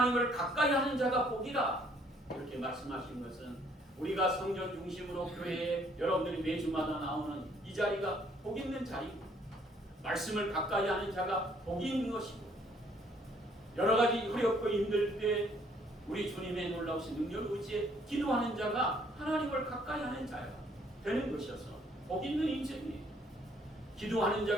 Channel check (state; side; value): normal; both; correlation 0.64